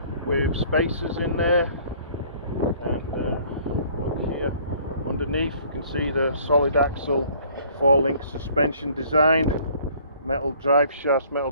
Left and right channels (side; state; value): both; inverted; correlation -0.56